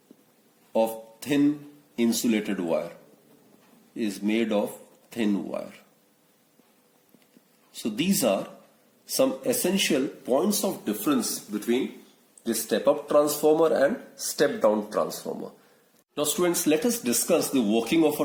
of thin insulated wire, So these are some essential points of difference between the step-up transformer and step-down transformer. Now students, let us discuss the working of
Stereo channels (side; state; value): both; identical; correlation 1.00